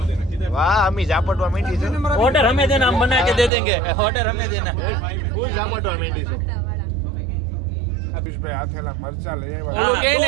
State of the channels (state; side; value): drops out; left; at 3.5 s